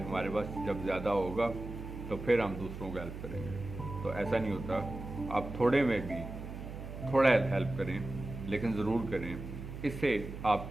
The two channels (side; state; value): right; noise; hum, 9 dB below the sound